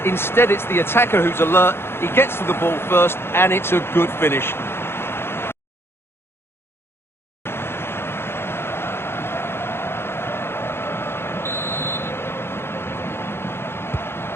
Instead, it's the attacker who's alert. He gets to the ball first, and it's a good finish.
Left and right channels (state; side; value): late; right; 0.11 ms